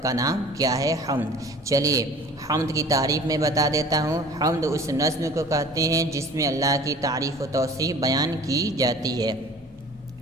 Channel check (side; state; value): both; normal; correlation 0.46